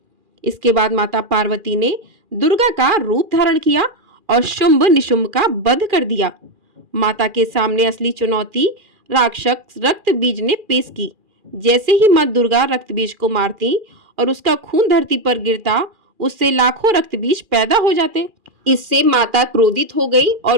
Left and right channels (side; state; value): left; late; 2.4 ms